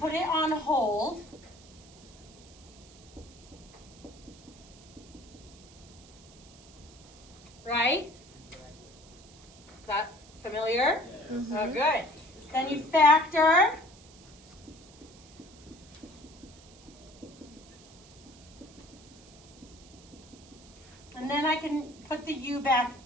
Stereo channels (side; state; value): right; noise; hiss, 22 dB below the sound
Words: it on hold. Right? Is that familiar? Yes. Oh, good. Then you factor. And then I can put the U back